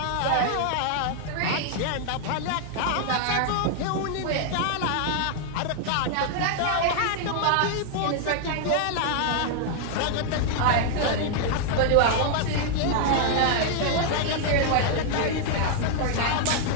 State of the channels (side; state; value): both; different; correlation 0.00